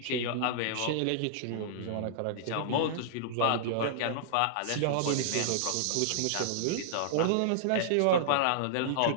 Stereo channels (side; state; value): both; different; correlation -0.02